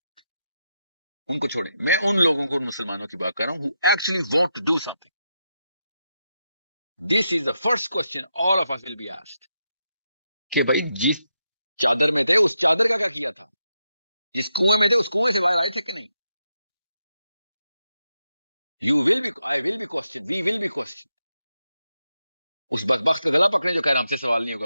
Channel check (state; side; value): inverted; both; correlation -0.85